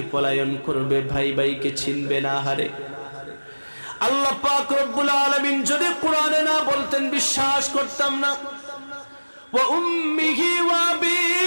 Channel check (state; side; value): inverted; both; correlation -1.00